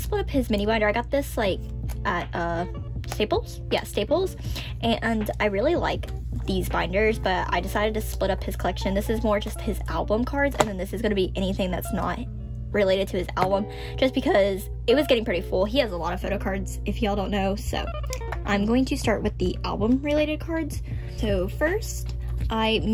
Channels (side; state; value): both; identical; correlation 1.00